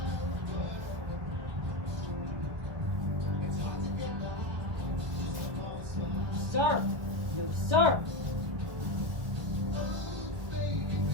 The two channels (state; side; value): late; left; 2.1 ms